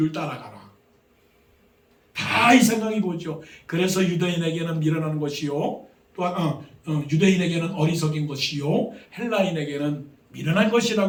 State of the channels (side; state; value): both; identical; correlation 1.00